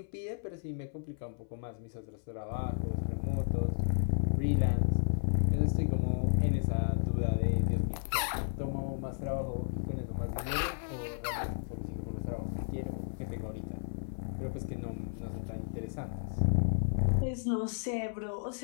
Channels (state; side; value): silent; right; 55 dB below the other